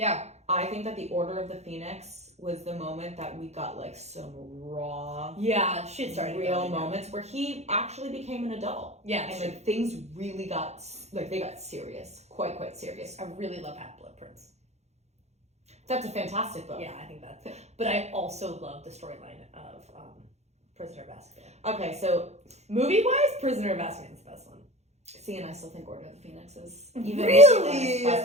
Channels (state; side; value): late; left; 0.32 ms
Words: I think that the Order of the Phoenix was the moment that we got like some raw, shit started real going down. moments where he actually became an adult. Yeah, and like things really got they got serious, quite serious. I really love Half-Blood Prince. That's a fantastic book. Yeah, I think that's. But I also love the storyline of Prisoner of Azkaban. Okay, so movie-wise, Prisoner of Azkaban is the best one. See, and I still think Order of the Phoenix is really